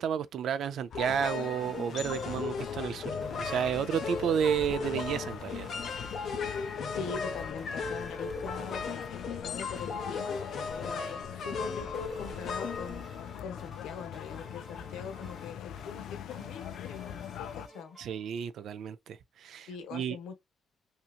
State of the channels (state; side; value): normal; both; correlation 0.62